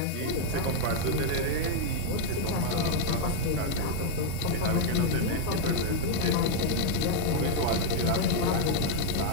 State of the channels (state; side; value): different; both; correlation 0.00